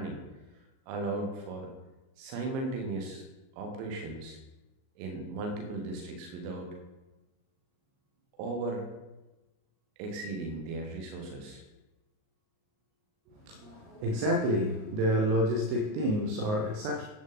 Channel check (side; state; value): left; late; 38 ms